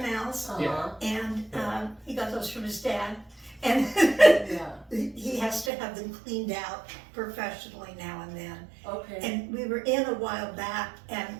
Uh-huh. and he got those from his dad. And Yeah, he has to have them cleaned out professionally now and then. okay. And we were in a while back, and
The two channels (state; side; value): drops out; left; at 5.7 s